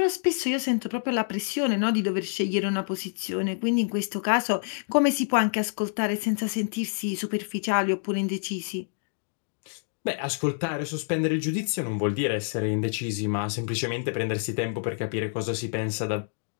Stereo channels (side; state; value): right; silent; digital silence